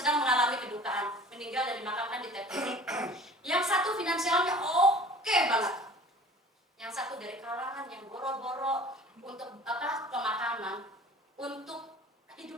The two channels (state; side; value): normal; both; correlation 0.45